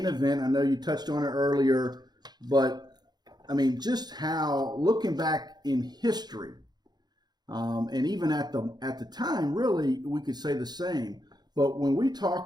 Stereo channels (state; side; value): late; left; 0.20 ms